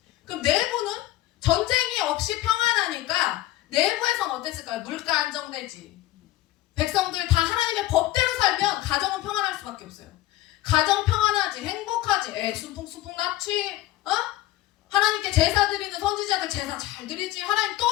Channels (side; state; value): right; quieter; 15.8 dB